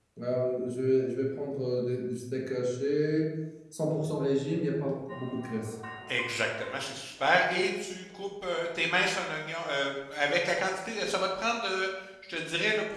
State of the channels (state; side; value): identical; both; correlation 1.00